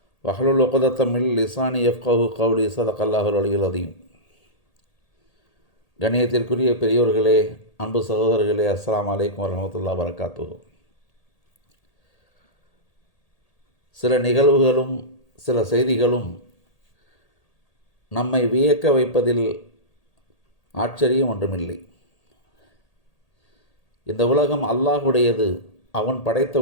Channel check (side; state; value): right; late; 1.8 ms